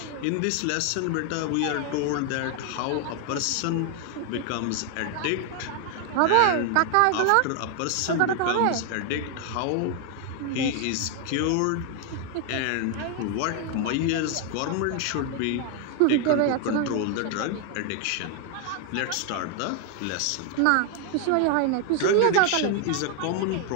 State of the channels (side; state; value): both; different; correlation 0.00